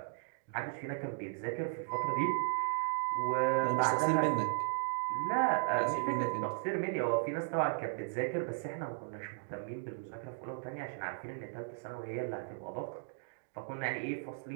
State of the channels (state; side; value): silent; left; digital silence